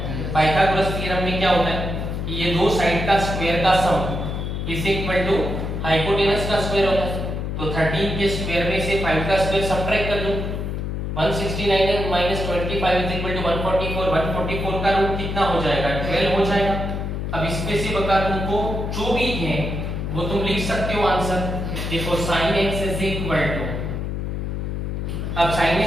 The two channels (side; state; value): left; noise; hum, 3 dB below the sound